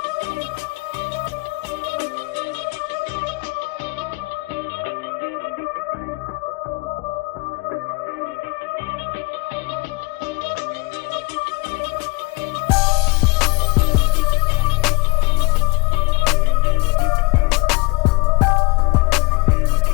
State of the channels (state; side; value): quieter; right; 25.4 dB